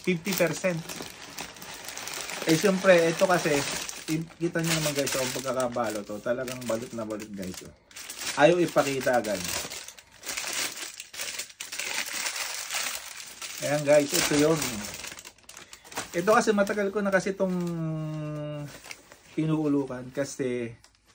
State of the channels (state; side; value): identical; both; correlation 1.00